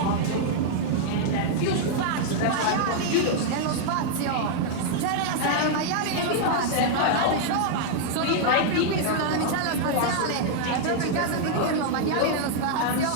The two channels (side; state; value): both; different; correlation -0.01